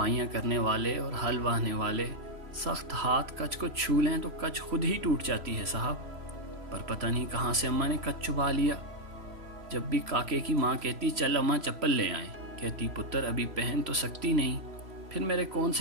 करने वाले और हल वाहने वाले सख्त हाथ कच को छू लें तो कच खुद ही टूट जाती है साहब। पर पता नहीं कहाँ से अम्मा ने कच चुबा लिया। जब भी काके की माँ कहती चल अम्मा चप्पल ले आए, कहती पुत्र अभी पहन तो सकती नहीं। फिर मेरे कौन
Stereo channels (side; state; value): left; late; 3.0 ms